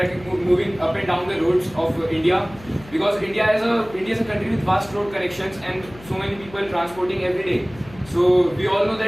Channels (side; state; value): left; noise; hum, 20 dB below the sound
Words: moving up and down the roads of India, because India is a country with vast road connections and so many people transporting every day. So we all know